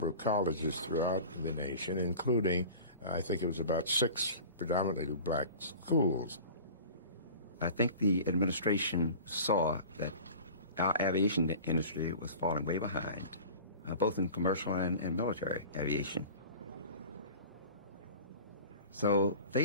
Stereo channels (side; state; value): both; inverted; correlation -0.39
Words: of colleges throughout the nation, including, I think it was about 6 predominantly black schools. I think the administration saw that our aviation industry was falling way behind, both in commercial and military aviation. So